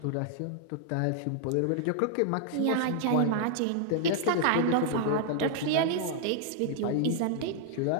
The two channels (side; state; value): both; different; correlation -0.01